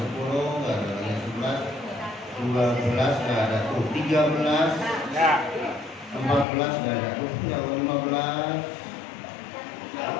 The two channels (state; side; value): drops out; right; at 6.5 s